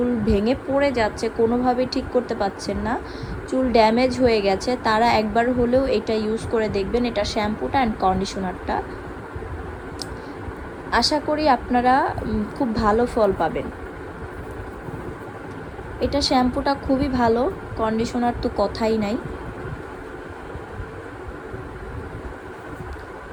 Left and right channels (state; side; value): identical; both; correlation 1.00